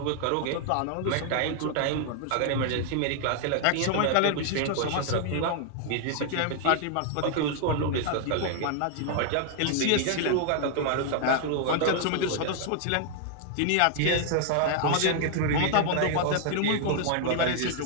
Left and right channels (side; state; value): both; different; correlation 0.00